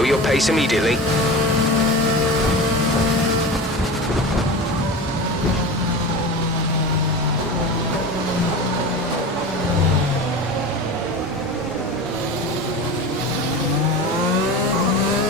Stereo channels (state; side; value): normal; both; correlation 0.30